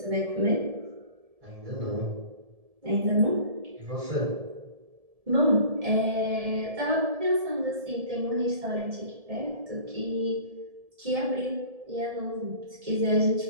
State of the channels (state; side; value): late; left; 1.7 ms